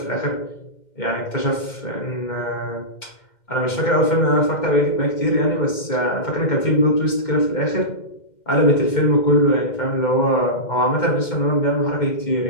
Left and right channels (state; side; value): late; right; 2.1 ms